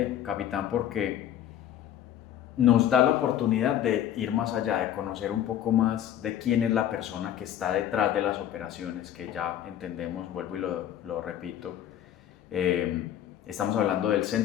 capitán, porque nos da la oportunidad de ir más allá, de conocer un poco más de quién es la persona que está detrás de las operaciones, que ya entendemos, vuelvo y lo repito. Eh, Estamos hablando del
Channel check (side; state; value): right; quieter; 11.0 dB